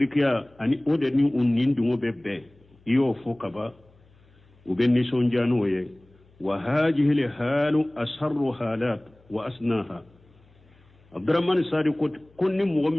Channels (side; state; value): left; noise; hum, 30 dB below the sound